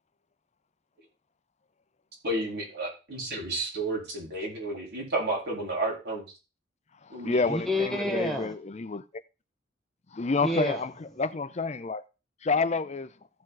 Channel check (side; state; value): both; normal; correlation 0.24